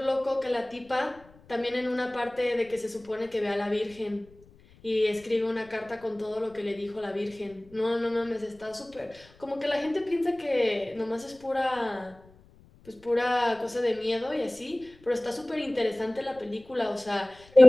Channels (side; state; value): left; noise; rumble, 26 dB below the sound